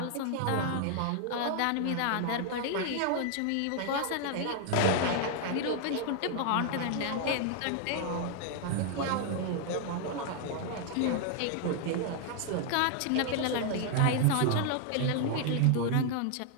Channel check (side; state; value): both; different; correlation 0.00